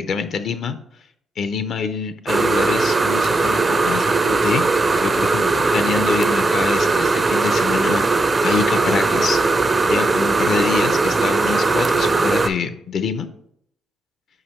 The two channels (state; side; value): normal; both; correlation 0.84